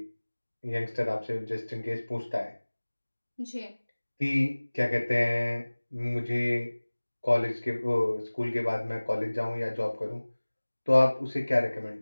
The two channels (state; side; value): inverted; both; correlation -1.00